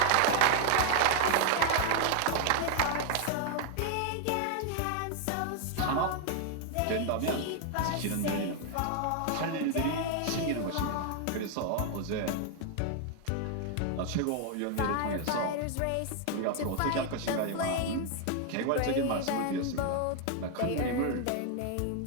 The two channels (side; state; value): both; different; correlation 0.00